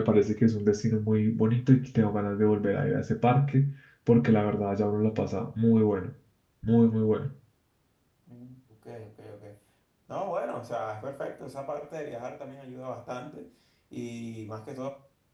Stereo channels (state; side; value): identical; both; correlation 1.00